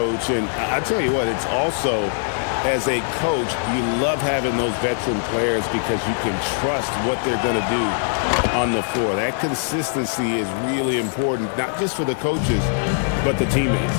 And I tell you what, it's also, as a coach, you love having those veteran players because you can trust what they're going to do on the floor. That consistency is really important, not just for the coaches, but the teammates.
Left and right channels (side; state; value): right; silent; digital silence